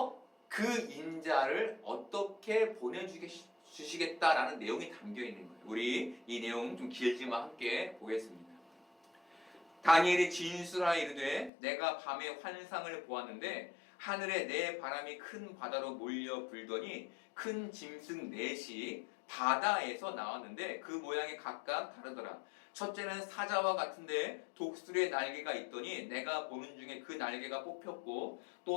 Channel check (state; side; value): drops out; right; at 11.5 s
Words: 그 인자를 어떻게 보내주시겠다라는 내용이 담겨 있는 거예요. 우리 이 내용 좀 길지만 함께 보겠습니다. 다니엘이 진술하여 이르되 내가 밤에 환상을 보았는데 하늘에 내 바람이 큰 바다로 몰려 불더니 큰 짐승 넷이 바다에서 나왔는데 그 모양이 각각 다르더라. 첫째는 사자와 같은데 독수리의 날개가 있더니 내가 보는 중에 그 날개가 뽑혔고